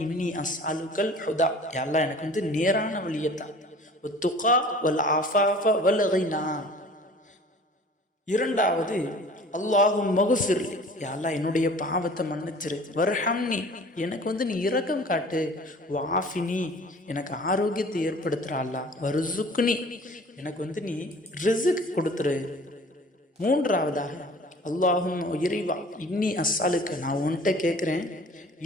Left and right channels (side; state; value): both; normal; correlation 0.46